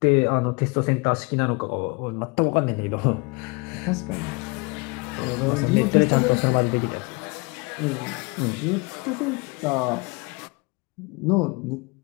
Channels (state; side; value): quieter; right; 28.6 dB